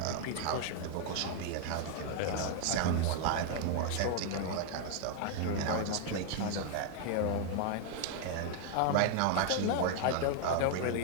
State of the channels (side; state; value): both; different; correlation 0.00